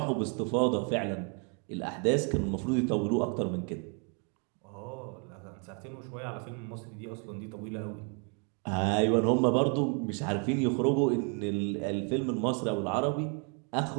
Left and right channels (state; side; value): quieter; left; 37.7 dB